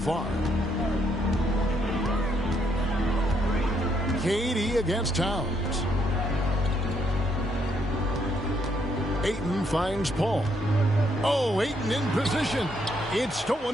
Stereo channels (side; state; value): both; normal; correlation 0.73